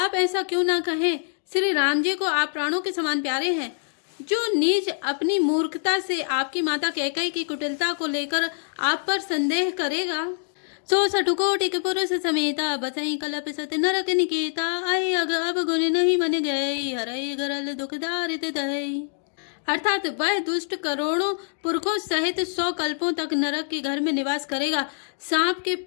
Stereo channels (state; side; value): silent; right; digital silence